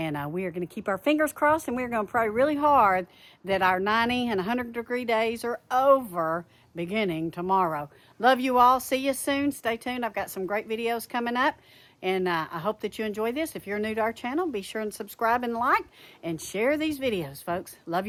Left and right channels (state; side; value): identical; both; correlation 1.00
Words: we are going to keep our fingers crossed, and we're going to pray really hard that our 90 and 100-degree days are over beginning tomorrow. Love you all. See you soon. Stay tuned. I've got some great videos coming up, and I hope that you enjoy this. If you're new to our channel, be sure and subscribe and like and share these videos, folks. Love